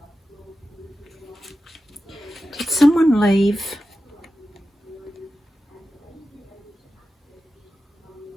Did someone leave?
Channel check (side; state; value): both; normal; correlation 0.93